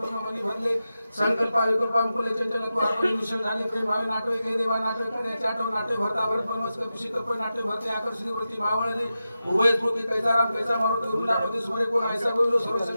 प्रमणी भरले संकल्प कृपामुले चंचल तू आपण निश्चल झाले प्रेम भावे नाटवे के देवा नाटवे करण्याचे आठव नाट्य भरता भरत परमस कपिशी कर्प नाट्य भरते आकर्षित वृत्ती भावळले उभय स्फूर्ती कैसा राम कैसा मारुती उरुला प्रति सूर्य कोण ऐसा बोललो सर्व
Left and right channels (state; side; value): inverted; both; correlation -0.92